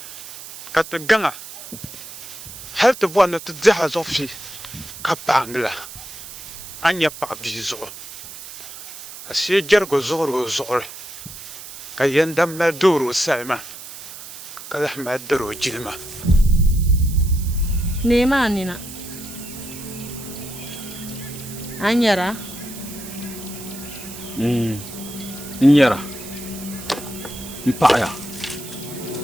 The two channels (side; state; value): right; noise; hiss, 13 dB below the sound